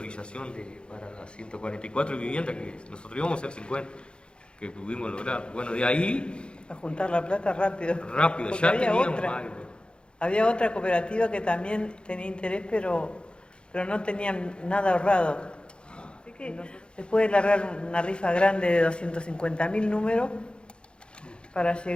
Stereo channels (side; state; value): right; late; 0.054 ms